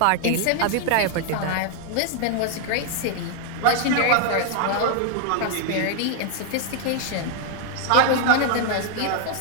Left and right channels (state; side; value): different; both; correlation 0.00